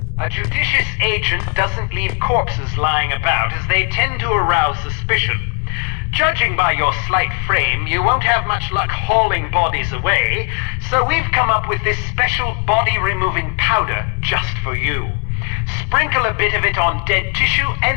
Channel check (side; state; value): right; quieter; 35.5 dB